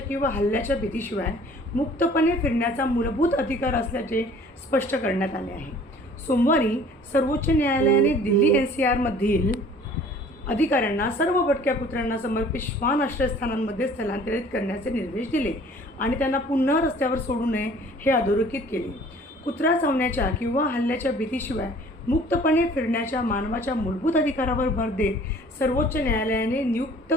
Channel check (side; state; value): both; normal; correlation 0.51